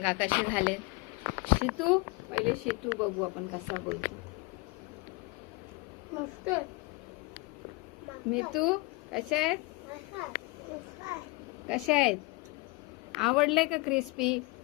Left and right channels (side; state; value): right; quieter; 25.9 dB